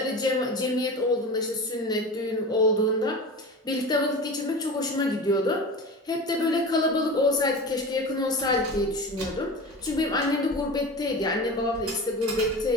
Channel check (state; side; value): normal; both; correlation 0.31